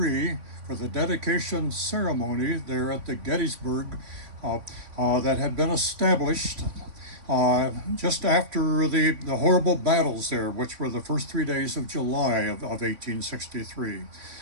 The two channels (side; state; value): left; late; 3.5 ms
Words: for the dedication ceremony there at the Gettysburg that had been established just after the horrible battles there, which were the first 3 days of July of 1863.